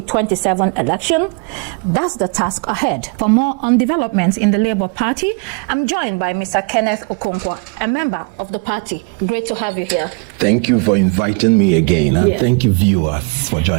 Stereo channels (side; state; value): left; quieter; 35.7 dB